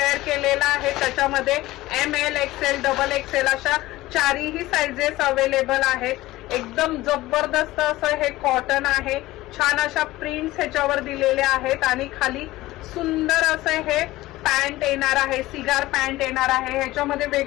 केलेला आहे त्याच्यामध्ये ML XL डबल XL अशा चारही साइजेस अवेलेबल आहेत। एकदम जबरदस्त असं हे कॉटन आहे। छान अशा प्रिंट्स ह्याच्यावर दिलेले आहेत आणि खाली सुंदर असं हे पॅन्ट येणार आहे, सिगार पॅन्ट येणार आहे। ह्याच्यामध्ये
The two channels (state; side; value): quieter; right; 17.6 dB